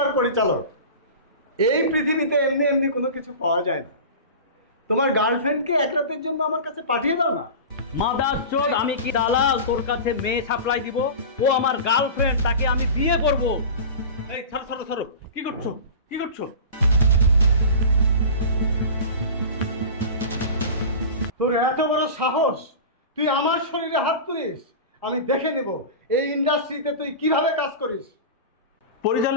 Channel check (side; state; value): both; inverted; correlation -0.32